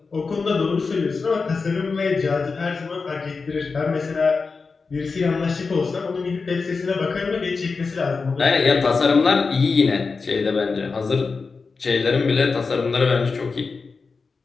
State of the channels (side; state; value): right; quieter; 4.5 dB